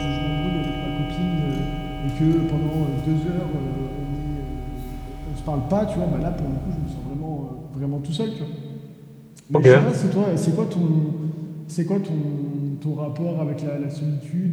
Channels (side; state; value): both; identical; correlation 1.00